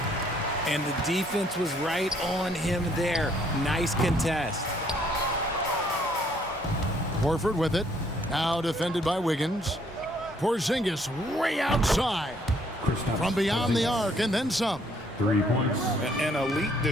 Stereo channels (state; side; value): normal; both; correlation 0.65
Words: And the defense was right on him there. Nice contest. Horford with it. Now defended by Wiggins. Porzingis way outside. From beyond the arc and then some. 3 points. An elite